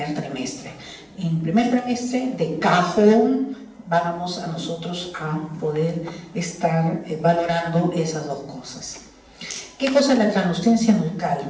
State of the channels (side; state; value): both; identical; correlation 1.00